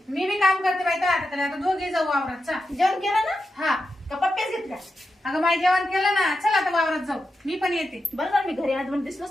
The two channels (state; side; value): normal; both; correlation 0.88